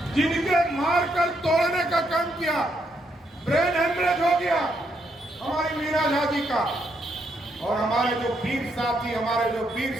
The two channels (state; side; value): normal; both; correlation 0.76